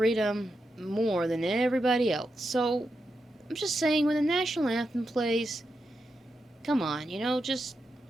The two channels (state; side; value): normal; both; correlation 0.87